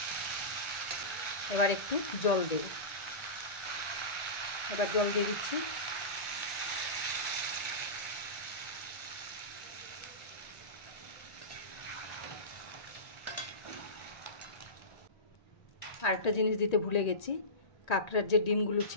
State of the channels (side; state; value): right; late; 1.9 ms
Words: এবার একটু জল দেব। এবার জল দিয়ে দিচ্ছি। আরেকটা জিনিস দিতে ভুলে গেছি, কাঁকড়ার যে ডিমগুলো